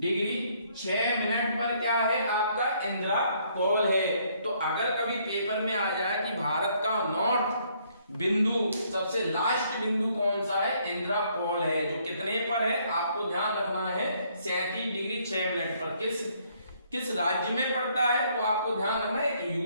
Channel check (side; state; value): both; inverted; correlation -0.67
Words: 6 मिनट पर क्या है, आपका इंदिरा कॉल है। तो अगर कभी पेपर में आ जाए कि भारत का नॉर्थ बिंदु, सबसे लास्ट बिंदु कौन सा है, इंदिरा कॉल है, जो कितने पर है, आपको ध्यान रखना है 37 डिग्री 6 मिनट पर। किस राज्य में पड़ता है, तो आपको ध्यान रखना है,